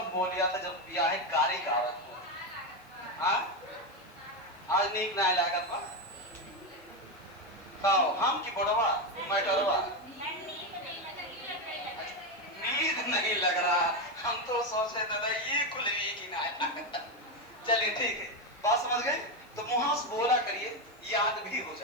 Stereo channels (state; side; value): noise; left; hiss, 30 dB below the sound